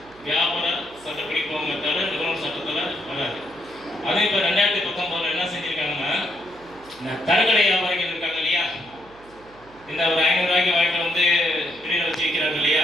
வியாபார சட்டப்படி போங்க தவிர நுகர்வோர் சட்டத்தில் வராது. அதே இப்போ 2019 என்ன செஞ்சுருக்காங்கன்னா, தரக்கடை வியாபாரிகள் இருக்காங்க இல்லையா, இந்த ஒரு 500 ரூபாய்க்கு வாங்கிட்டு வந்து வெளியில் வச்சு விற்கிறாங்க இல்லையா,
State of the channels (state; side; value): noise; right; hum, 25 dB below the sound